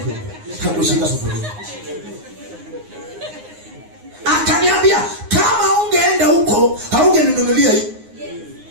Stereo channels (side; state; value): left; late; 9.6 ms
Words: Hakushika sufuria. Akaniambia kama ungeenda huko haungeninunulia hii.